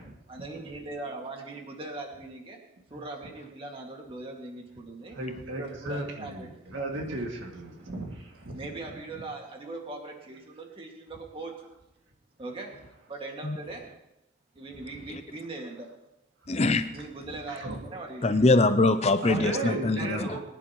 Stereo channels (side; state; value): both; normal; correlation 0.45